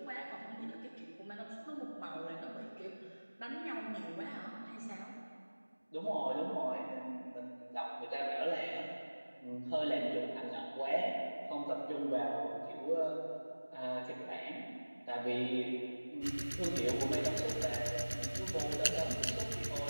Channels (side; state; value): both; inverted; correlation -1.00